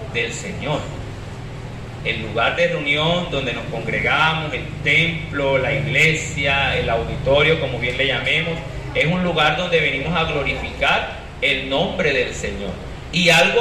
del Señor. El lugar de reunión donde nos congregamos, el templo, la iglesia, el auditorio, como bien le llamemos, es un lugar donde venimos a glorificar el nombre del Señor. Y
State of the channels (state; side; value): identical; both; correlation 1.00